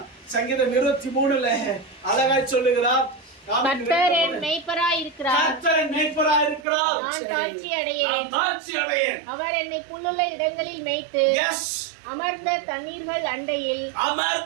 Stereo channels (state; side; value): drops out; left; at 6.7 s